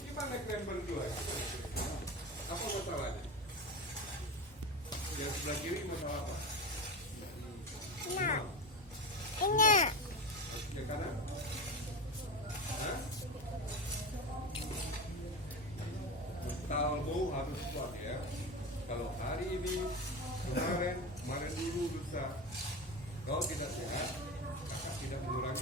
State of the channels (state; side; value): normal; both; correlation 0.23